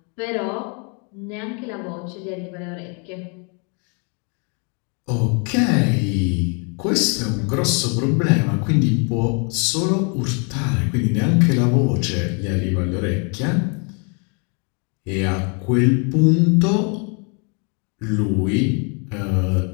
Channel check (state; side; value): quieter; right; 36.5 dB